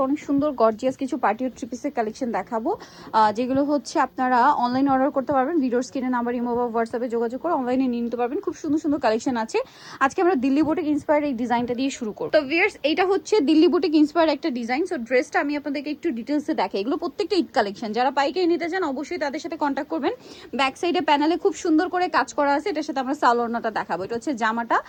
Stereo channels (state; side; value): identical; both; correlation 1.00